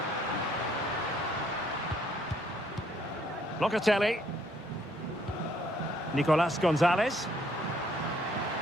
Locatelli. Nicolas Gonzalez.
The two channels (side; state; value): both; normal; correlation 0.66